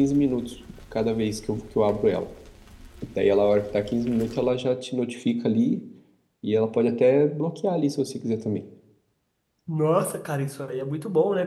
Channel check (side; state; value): both; identical; correlation 1.00